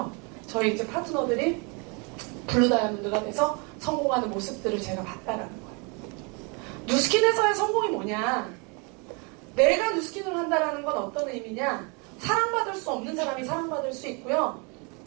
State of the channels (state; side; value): quieter; left; 32.5 dB